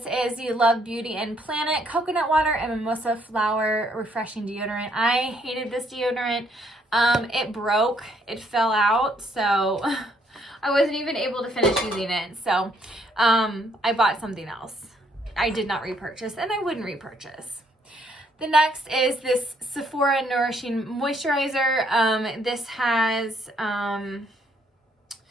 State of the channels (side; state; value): both; normal; correlation 0.69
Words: is the Love Beauty and Planet Coconut Water and Mimosa Flower Refreshing Deodorant. I hated this deodorant. It broke. It fell out, so I wasn't even able to finish using it. So I bought something else. I did not repurchase, and I wouldn't repurchase. The next is this Sephora Nourishing Moisturizer. This has,